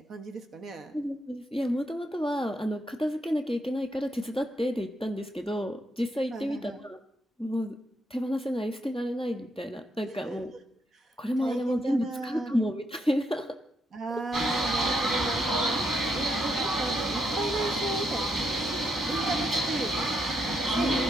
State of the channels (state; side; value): normal; both; correlation 0.79